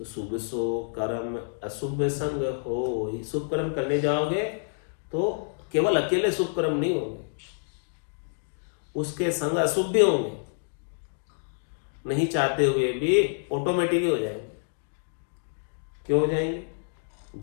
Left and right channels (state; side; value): silent; right; digital silence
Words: शुभ सो कर्म अशुभ संग हो। शुभ कर्म करने जाओगे तो केवल अकेले शुभ कर्म नहीं होंगे, उसके संग अशुभ भी होंगे, नहीं चाहते हुए भी ऑटोमेटिक हो जाएंगे। क्यों हो जाएंगे?